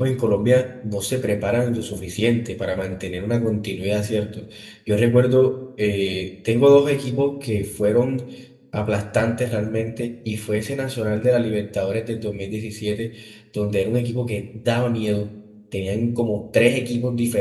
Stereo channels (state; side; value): identical; both; correlation 1.00